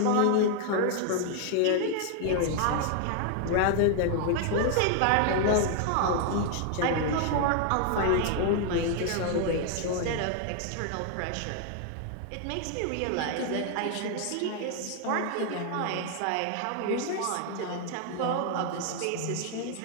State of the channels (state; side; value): different; both; correlation 0.00